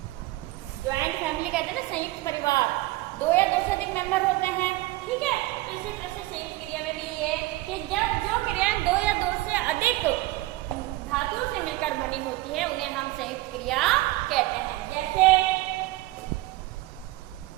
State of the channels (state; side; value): quieter; left; 18.6 dB